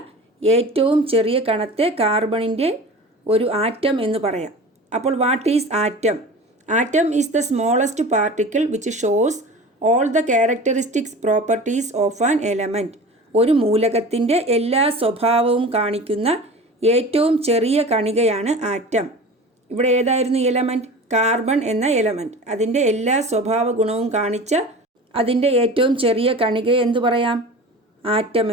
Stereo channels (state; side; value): normal; both; correlation 0.36